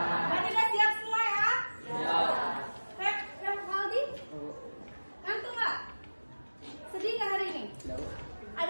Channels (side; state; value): both; inverted; correlation -1.00